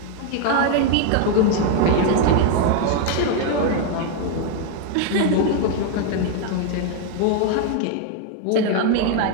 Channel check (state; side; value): different; both; correlation 0.00